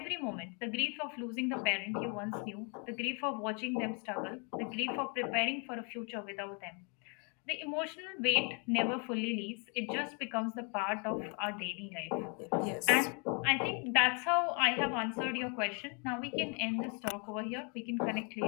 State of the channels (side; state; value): right; quieter; 35.6 dB